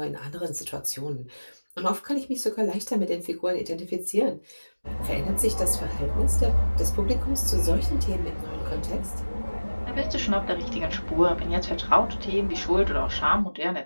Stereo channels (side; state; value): both; inverted; correlation -1.00